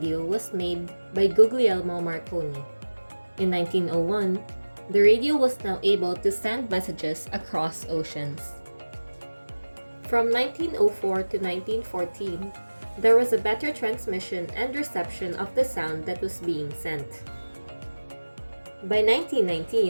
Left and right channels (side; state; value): both; inverted; correlation -1.00